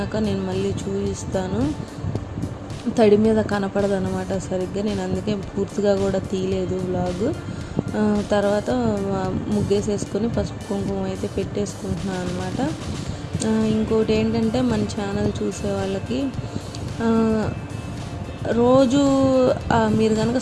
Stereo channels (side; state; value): both; identical; correlation 1.00